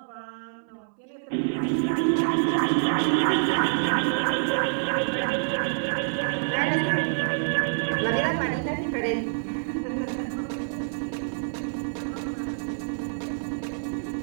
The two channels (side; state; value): left; silent; 60 dB below the other